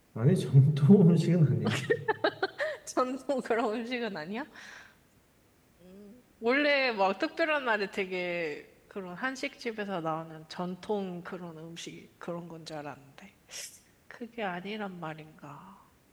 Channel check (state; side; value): identical; both; correlation 1.00